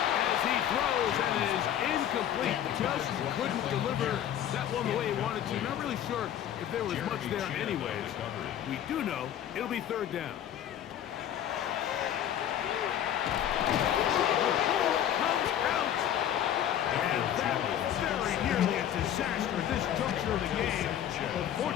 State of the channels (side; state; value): right; quieter; 10.6 dB